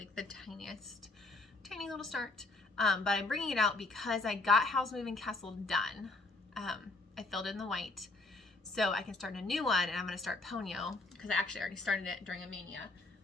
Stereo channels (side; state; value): right; quieter; 3.3 dB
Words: the tiny little start. But I'm bringing it out because I got Howl's Moving Castle done. I filled in the white, so I can start a new one, and I'm going to start Ponyo because I actually already started it during a mania.